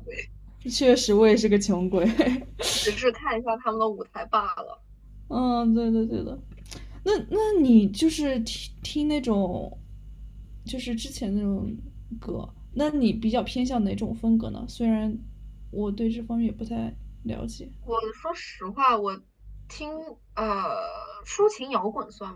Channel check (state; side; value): identical; both; correlation 1.00